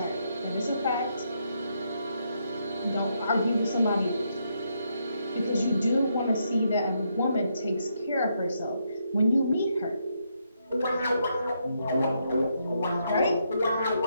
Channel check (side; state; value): both; inverted; correlation -0.78